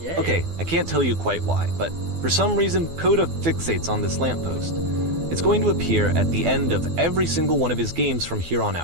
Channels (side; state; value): left; late; 12 ms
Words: Yeah. Okay, I can't tell you quite why, but for some reason, Coda fixates on this lamppost. It's going to appear at the end of every single one of his games from here on